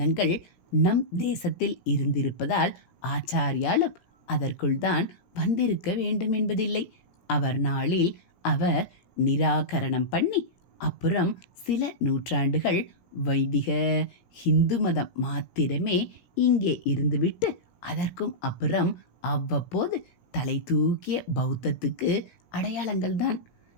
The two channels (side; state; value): right; late; 17 ms